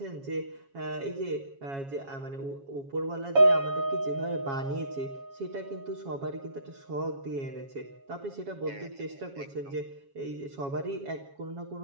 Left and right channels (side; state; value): left; late; 7.3 ms